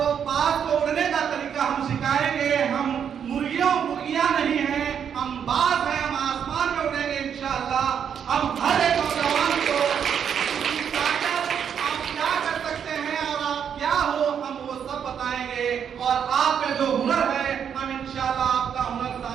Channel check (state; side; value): quieter; left; 8.0 dB